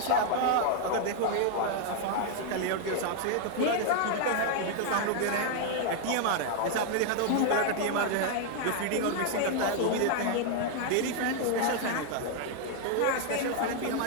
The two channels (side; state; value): both; different; correlation 0.00